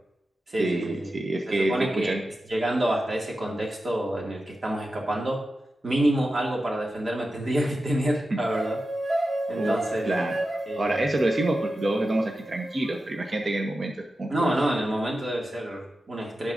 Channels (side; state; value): both; normal; correlation 0.92